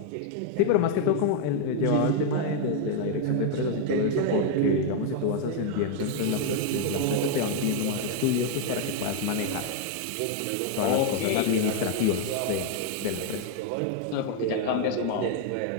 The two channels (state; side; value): different; both; correlation 0.00